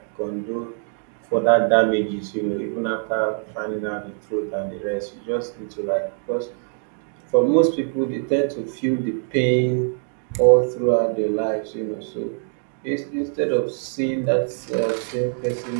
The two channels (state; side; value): silent; left; 55 dB below the other